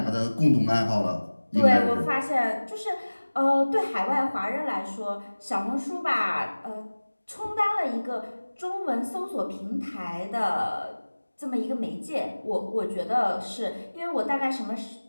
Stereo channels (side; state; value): both; inverted; correlation -1.00